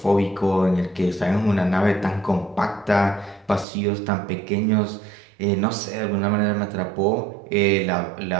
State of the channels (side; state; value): left; drops out; at 3.7 s